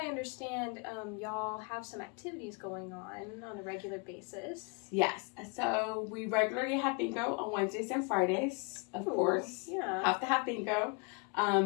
understand, y'all have some activities going on a regular basis. Yes. So we regularly have bingo on Wednesdays and Fridays, of course. Yeah. Have to have bingo.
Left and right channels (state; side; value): quieter; right; 32.0 dB